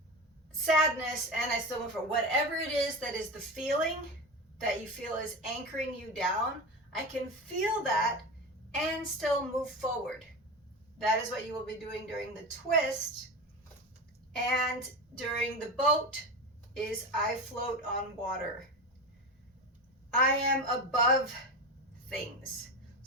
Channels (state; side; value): normal; both; correlation 0.24